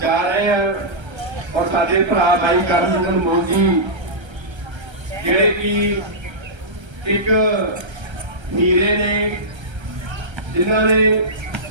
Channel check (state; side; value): late; left; 1.3 ms